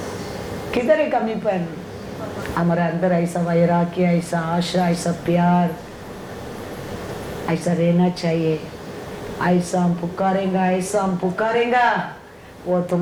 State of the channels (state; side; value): identical; both; correlation 1.00